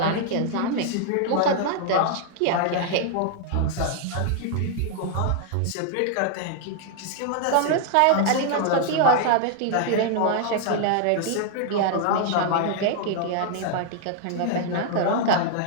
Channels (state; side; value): different; both; correlation 0.00